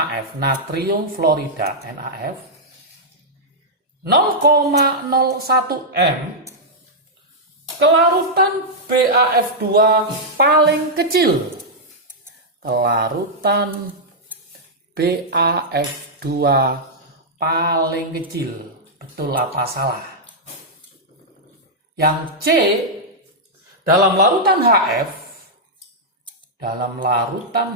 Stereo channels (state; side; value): normal; both; correlation -0.07